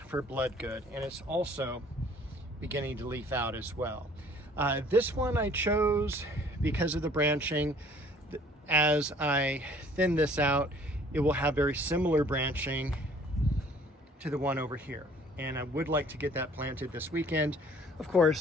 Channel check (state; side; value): normal; both; correlation 0.55